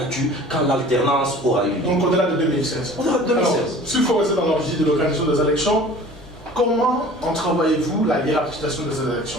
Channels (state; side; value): normal; both; correlation 0.45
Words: quand l'alternance aura eu lieu. Donc au-delà de 2016. Au-delà de 2016. Alors, s'il faut rester dans l'origine de l'organisation des élections, comment entrevoyez-vous la hiérarchisation de ces élections?